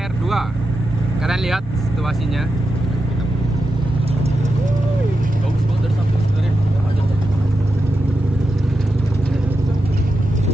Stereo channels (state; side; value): normal; both; correlation 0.89